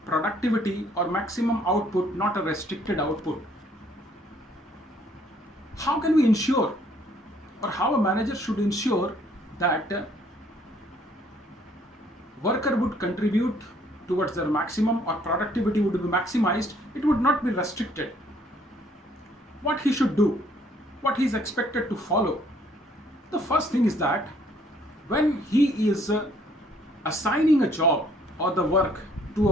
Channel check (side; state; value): both; normal; correlation 0.63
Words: productivity or maximum output, not a restricted output. How can we ensure, or how a manager should ensure that worker would contribute towards their maximum or productivity would be maximized? It would not be restricted. What he should do, what he is expected to follow. The first thing is that when he is assigning a job or the work to a